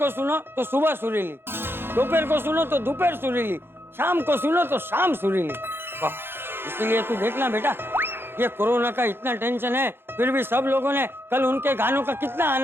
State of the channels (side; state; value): left; late; 0.11 ms